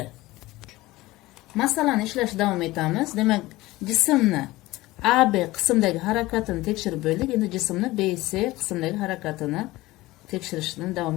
Masalani ishlashda davom etamiz. Demak, jismni AB qismdagi harakatini tekshirib bo'ldik. Endi jismni BC qismdagi harakatini tekshirishdan davom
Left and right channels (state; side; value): quieter; right; 18.8 dB